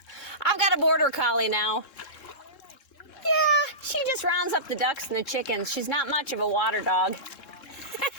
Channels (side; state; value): right; late; 3.7 ms